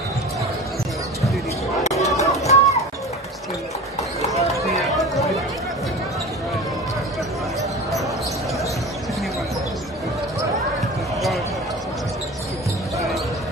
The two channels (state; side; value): normal; both; correlation 0.34